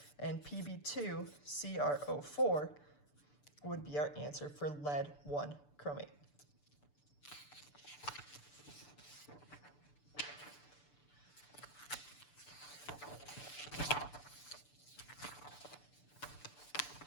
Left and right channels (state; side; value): late; right; 6.8 ms